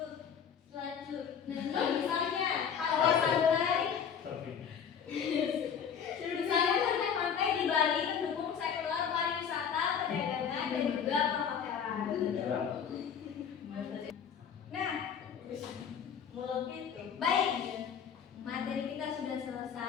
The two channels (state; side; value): quieter; right; 7.6 dB